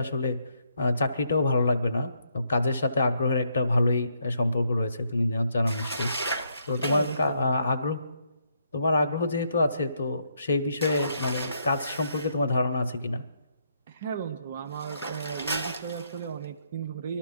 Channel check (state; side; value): inverted; both; correlation -0.75